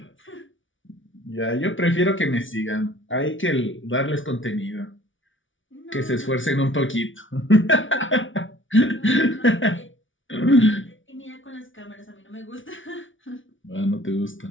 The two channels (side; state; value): right; late; 0.56 ms